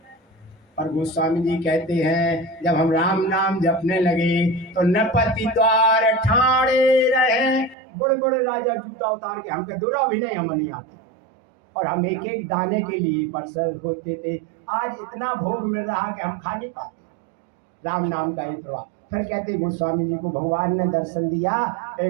पर गोस्वामी जी कहते हैं जब हम राम नाम जपने लगे तो नपति द्वार ठाणे रहे, बड़े बड़े राजा जूता उतार के, हमके दूरा भी नहीं, हम नहीं आते, और हम एक एक दाने के लिए परसर होते थे। आज इतना भोग मिल रहा कि हम खा नहीं पाते राम नाम का ये प्रभाव। फिर कहते गोस्वामी जी को भगवान ने दर्शन दिया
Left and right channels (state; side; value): drops out; left; at 7.8 s